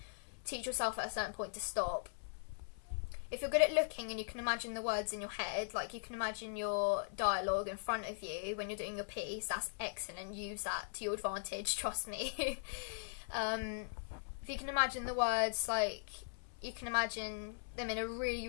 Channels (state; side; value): silent; right; 51 dB below the other